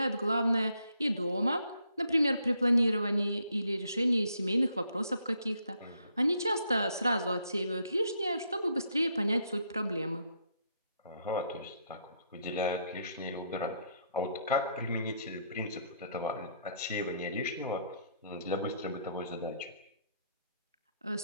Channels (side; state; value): both; inverted; correlation -0.72